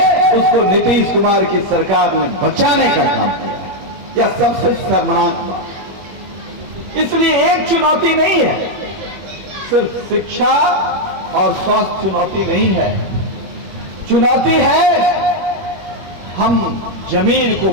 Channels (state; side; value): late; left; 21 ms